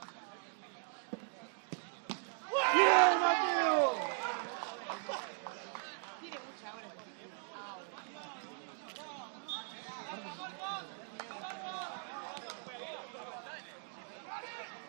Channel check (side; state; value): left; silent; 52 dB below the other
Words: ¡Bien, Mateo! Tiene mucha agua.